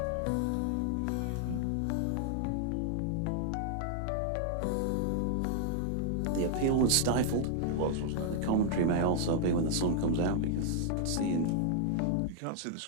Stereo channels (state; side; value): different; both; correlation -0.01